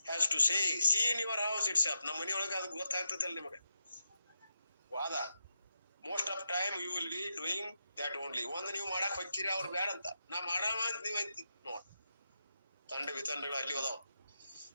has to say see in your house it's up. ನಮ್ಮ ಮನೆಯೊಳಗ ಅದು ಗೊತ್ತಾಗ್ತದಲ್ಲ ನಿಮಗೆ. ವಾದ most of time you will be doing that only. ಒಂದು ನೀವು ಮಾಡಕ್ ಹೋಗ್ತೀರಿ, ಅವ್ರು ಬ್ಯಾಡ ಅಂತ. ನಾ ಮಾಡಾಮ ಅಂತ ನೀವ್ ಅಂತಿ ನೋಡ್. ತಂಡ ವಿತಂಡಗಳು ಅಲ್ಲಿ ಹೋದಾವ್.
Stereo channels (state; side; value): inverted; both; correlation -0.87